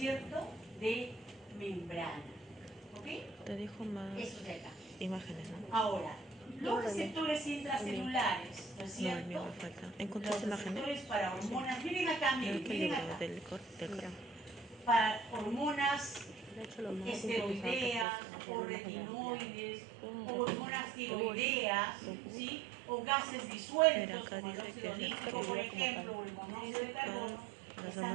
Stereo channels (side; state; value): left; drops out; at 18.1 s